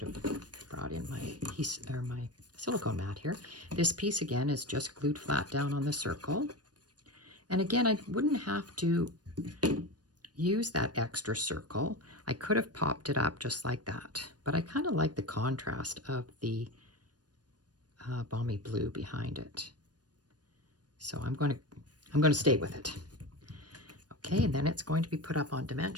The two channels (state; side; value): late; left; 0.69 ms